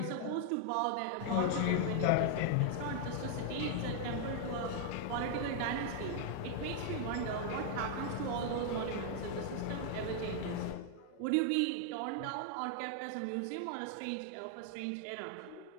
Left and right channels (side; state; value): both; different; correlation 0.00